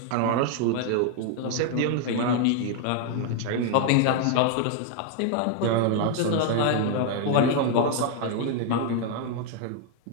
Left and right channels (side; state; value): both; different; correlation 0.00